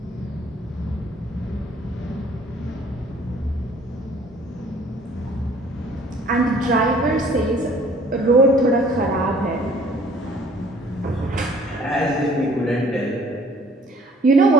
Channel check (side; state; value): both; normal; correlation 0.55